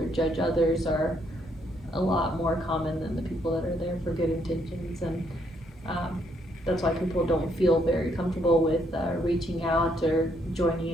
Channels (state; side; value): normal; both; correlation 0.72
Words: judge others are a lot more common than the people that are there for good intentions, and that's why people don't feel very comfortable with reaching out or joining